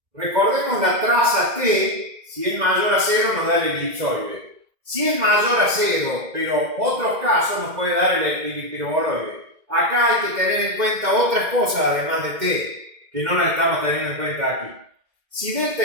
Recordemos la traza T, si es mayor a 0 nos da el elipsoide. Si es mayor a 0, pero otros casos nos puede dar el hiperboloide. Acá hay que tener en cuenta otras cosas además de T, que no las estamos teniendo en cuenta aquí. Si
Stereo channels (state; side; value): late; left; 2.1 ms